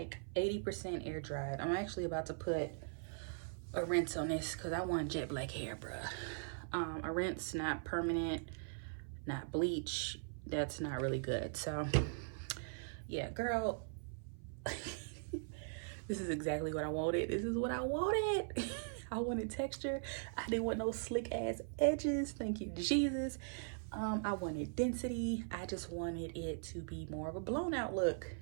80% air dried. I'm actually about to put a rinse on this because I want jet black hair, bruh. A rinse, not permanent, not bleach. That's not really good. So yeah, girl, this is exactly what I wanted. This is what I wanted. I wanted texture. I didn't want no slick ass edges. Thank you, Jesus. I wanted density. I just wanted it to be more of a blown out look.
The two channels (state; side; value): silent; left; 51 dB below the other